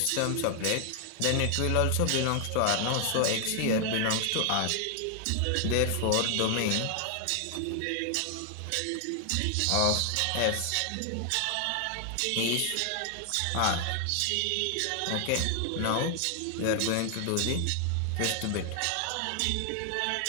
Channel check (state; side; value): different; both; correlation 0.00